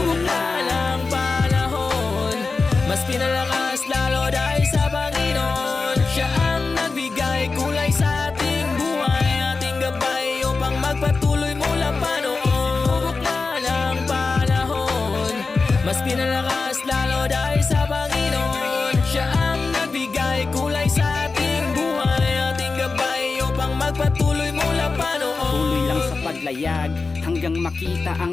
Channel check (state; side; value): quieter; right; 4.1 dB